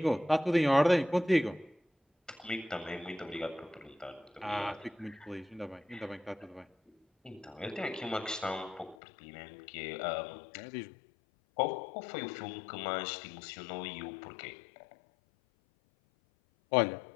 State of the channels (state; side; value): drops out; right; at 9.0 s